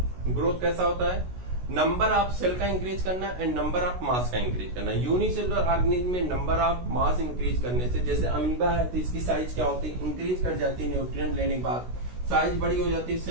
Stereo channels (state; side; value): late; left; 16 ms